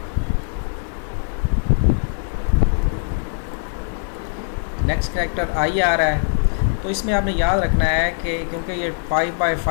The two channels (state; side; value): silent; right; digital silence